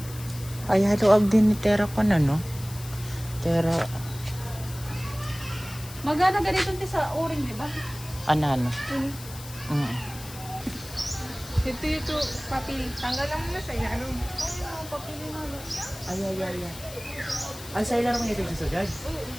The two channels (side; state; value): left; noise; hiss, 15 dB below the sound